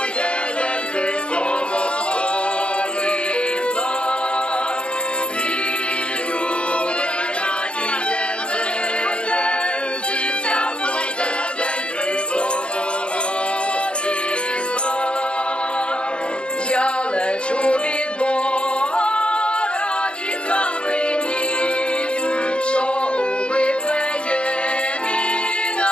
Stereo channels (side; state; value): right; late; 0.056 ms